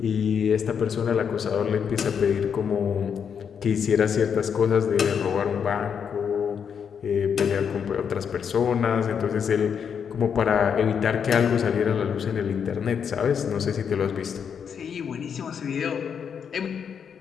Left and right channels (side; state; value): right; quieter; 7.2 dB